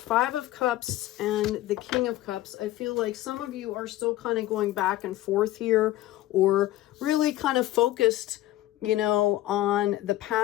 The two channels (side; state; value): right; quieter; 15.2 dB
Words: of Cups and the King of Cups. I feel like some of you are still kind of going back and forth here, or really kind of focused, you know, on the